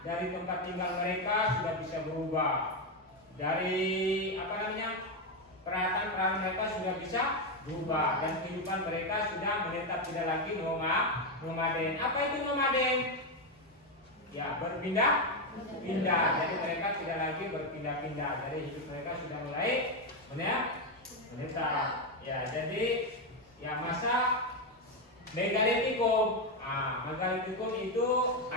dari tempat tinggal mereka sudah bisa berubah. Dari peralatan mereka sudah bisa berubah dan kehidupan mereka sudah menetap tidak lagi nomaden. Apa itu nomaden? Ya, berpindah-pindah. Jadi mereka tidak lagi berpindah-pindah. Jadi hidup mereka sudah mulai menetap. Ya, jadi ya masa Megalitikum. Megalitikum itu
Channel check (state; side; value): normal; both; correlation 0.07